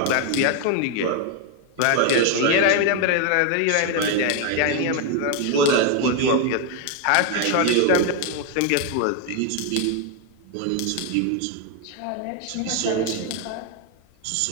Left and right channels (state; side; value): different; both; correlation 0.01